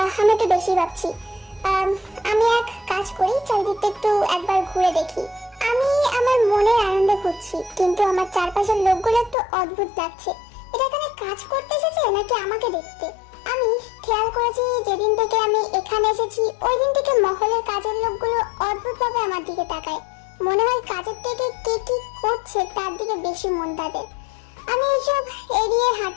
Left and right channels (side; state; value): right; drops out; at 9.3 s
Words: আমি একটু বেশি ভাবছি। আমি এক কাজ করি, চারিদিকটা একটু একবার ঘুরে দেখি। আমি আমার মনের আনন্দে ঘুরছি, কিন্তু আমার চারপাশের লোকগুলো একটু অদ্ভুত লাগছে। এটা এখানে কাজ করতে এসেছে নাকি আমাকে দেখতে? আমি খেয়াল করেছি যেদিন থেকে আমি এখানে এসেছি ওই দিন থেকে মহলের কাজের লোকগুলো অদ্ভুতভাবে আমার দিকে তাকায়। মনে হয় কাজের থেকে কে কি করছে তার দিকে বেশি মন তাদের। আমি এইসব এড়িয়ে